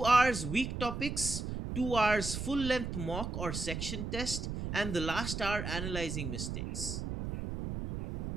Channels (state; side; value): noise; right; rumble, 4 dB below the sound